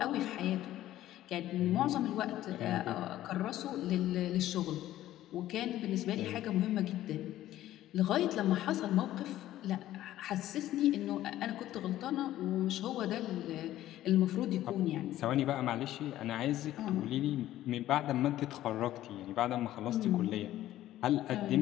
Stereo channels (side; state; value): right; quieter; 13.8 dB